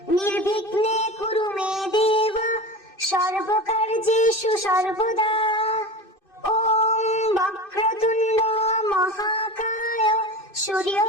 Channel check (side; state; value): right; late; 2.6 ms